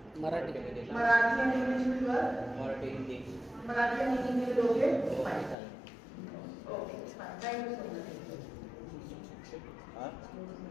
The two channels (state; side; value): drops out; right; at 5.6 s